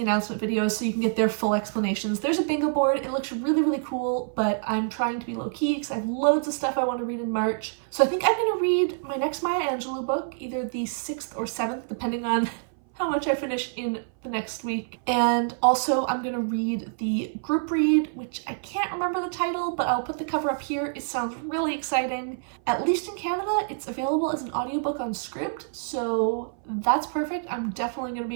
announcement videos so you can get their full explanations. There's a bingo board, it looks really cool, but I'm trying to be low-key because I have loads of stuff I want to read in March. So I think I'm going to read my next Maya Angelou book, either the 6th or 7th, depending on how much I finish in the next week. And also I'm gonna read the group read, which I can't remember the title, but I'll put the cover up here. It sounds really exciting. At least in Canada, it's available as an audiobook on Scribd, so that's perfect. I'm definitely gonna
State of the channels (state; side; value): silent; left; 58 dB below the other